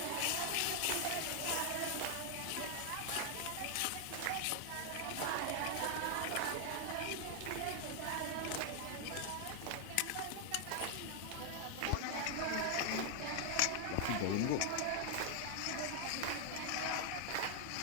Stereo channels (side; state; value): both; different; correlation 0.00